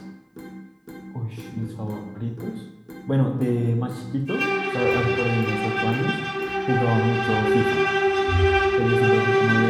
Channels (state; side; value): identical; both; correlation 1.00